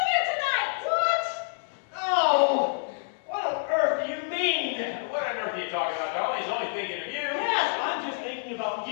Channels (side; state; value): right; silent; digital silence